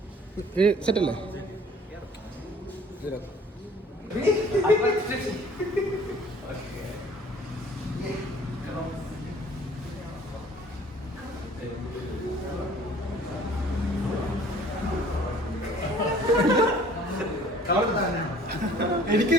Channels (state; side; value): normal; both; correlation 0.53